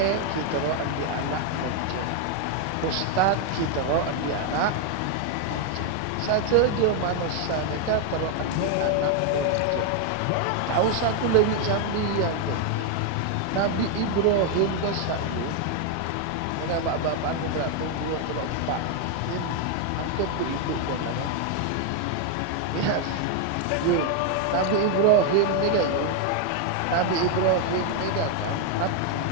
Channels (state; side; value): different; both; correlation 0.00